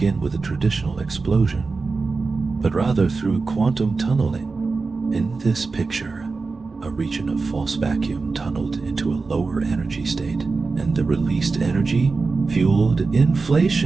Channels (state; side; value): quieter; left; 4.1 dB